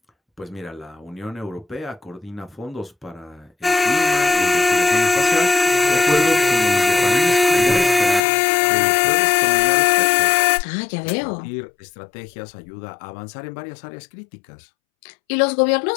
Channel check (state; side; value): drops out; right; at 8.2 s